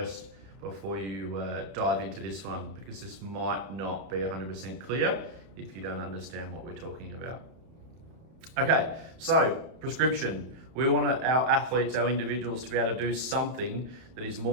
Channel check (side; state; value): left; late; 31 ms